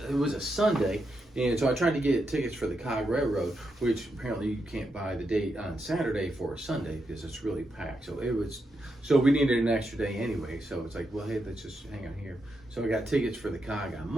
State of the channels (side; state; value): both; normal; correlation 0.84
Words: a Sunday. And so I tried to get tickets for the Cog Railroad, which apparently you can't buy the date on Saturday for a Sunday because it's really packed. So we needed an extra day anyway. So it's like, well, hey, let's just hang on here. So I got tickets for the Cog on